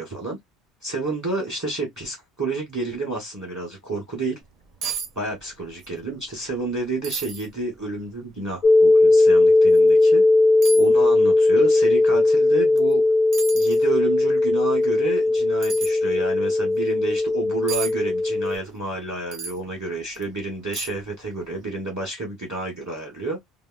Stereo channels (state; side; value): normal; both; correlation 0.88